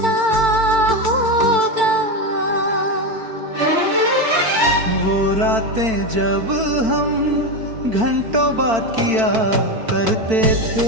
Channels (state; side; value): late; left; 4.5 ms